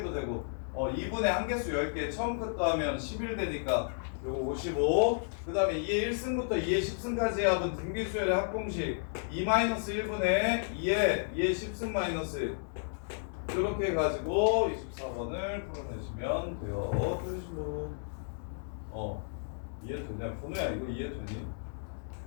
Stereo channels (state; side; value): silent; right; digital silence